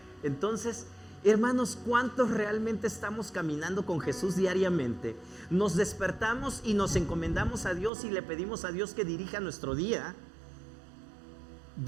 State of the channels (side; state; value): left; drops out; at 7.9 s